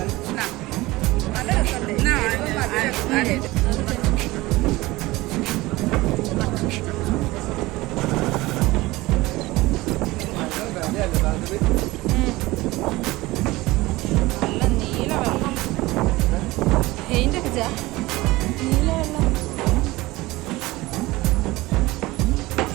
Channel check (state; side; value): quieter; left; 19.8 dB